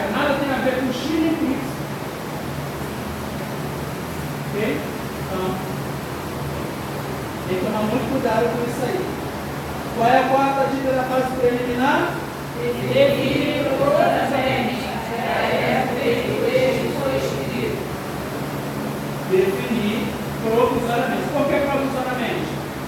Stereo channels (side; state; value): both; identical; correlation 1.00